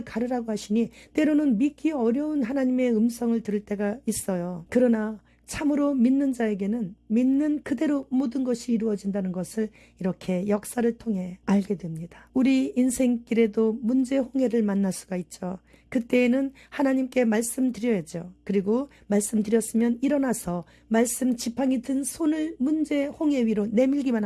가르라고 하시니 때로는 믿기 어려운 하나님의 음성을 들을 때가 있어요. 그러나 참으로 믿는 자에게는 믿는 그대로 모든 것이 이루어진다는 것을 이렇게 역사를 통해 알게 됩니다. 우리 인생길에도 문제 홍해를 만날 수가 있죠. 그때에는 하나님께 말씀드려야죠. 그리고 말씀드렸으면 일어나서 말씀 지팡이 든 손을 문제 홍해 위로 내밀기만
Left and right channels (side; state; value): both; identical; correlation 1.00